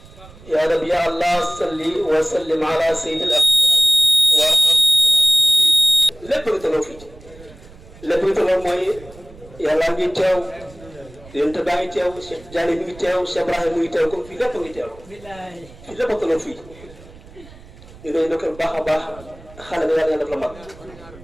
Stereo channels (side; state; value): right; noise; rumble, 21 dB below the sound